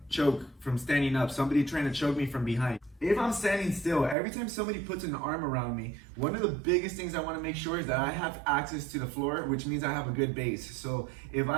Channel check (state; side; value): drops out; left; at 4.2 s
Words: choke from standing up, somebody trying to choke me from behind. If I'm standing still, every time somebody puts an arm around me, one of the biggest things I want to make sure is that I have access to the floor, which means I have a good base. So if